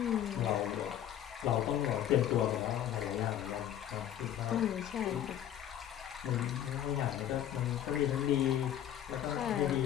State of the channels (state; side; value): quieter; right; 10.9 dB